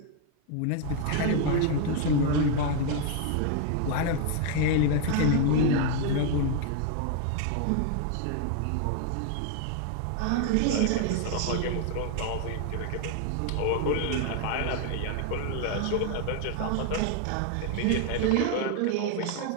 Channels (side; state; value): both; different; correlation 0.01